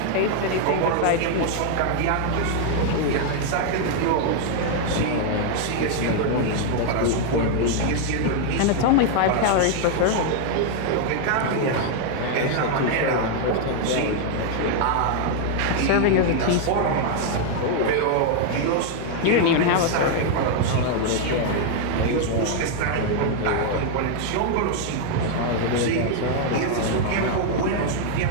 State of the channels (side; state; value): both; different; correlation 0.00